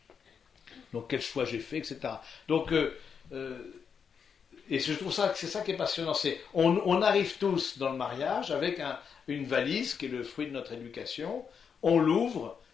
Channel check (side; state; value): right; quieter; 6.7 dB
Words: Donc quel choix j'ai fait, etc. Donc, et je trouve ça que c'est ça qui est passionnant. On arrive tous dans le mariage avec une valise qui est le fruit de notre éducation. On l'ouvre